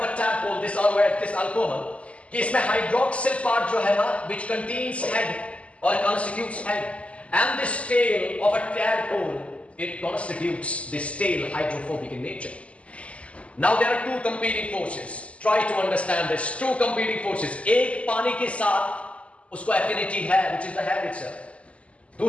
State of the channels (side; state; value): right; late; 0.062 ms